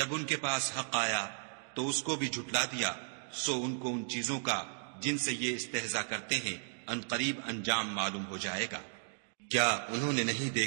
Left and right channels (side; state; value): left; silent; digital silence